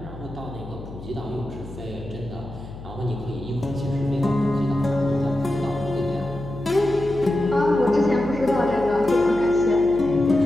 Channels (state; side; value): noise; left; hum, 14 dB below the sound